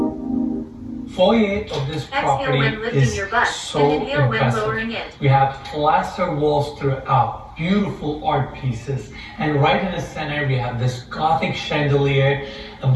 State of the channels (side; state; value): both; identical; correlation 1.00